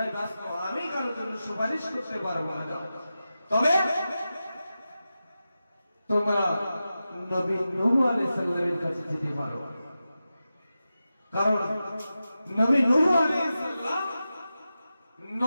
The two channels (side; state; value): both; inverted; correlation -0.92